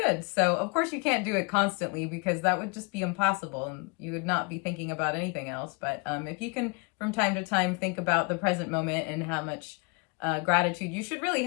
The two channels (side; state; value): right; quieter; 32.0 dB